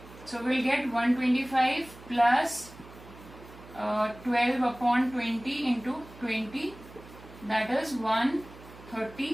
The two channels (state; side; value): noise; right; hum, 19 dB below the sound